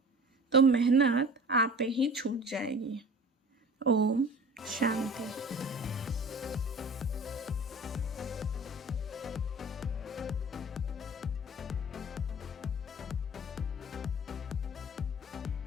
तो मेहनत आपे ही छूट जाएगी। ओम शांति।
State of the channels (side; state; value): both; normal; correlation 0.41